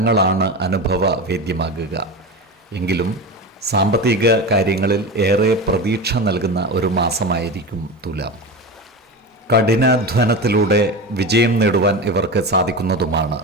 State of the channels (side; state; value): both; normal; correlation 0.25